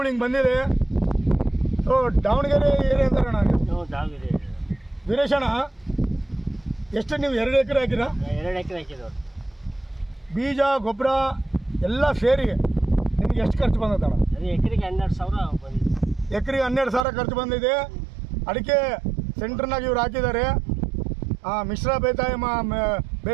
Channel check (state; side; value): drops out; left; at 17.1 s